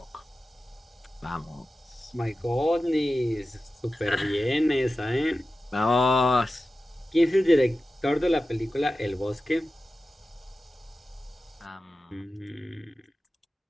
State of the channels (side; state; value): both; normal; correlation 0.94